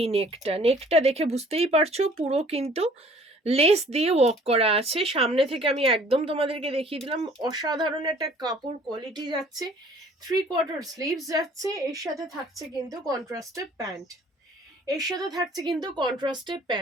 নেকটা, নেকটা দেখে বুঝতেই পারছো পুরো কিন্তু লেস দিয়ে ওয়ার্ক করা আছে। সামনে থেকে আমি একদম তোমাদেরকে দেখিয়ে দিলাম, অসাধারণ একটা কাপড় কোয়ালিটি যাচ্ছে, 3/4 স্লিভস যাচ্ছে, এর সাথে থাকছে কিন্তু কন্ট্রাস্টেড প্যান্ট, এর সাথে থাকছে কিন্তু কন্ট্রাস্টেড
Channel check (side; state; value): both; normal; correlation 0.54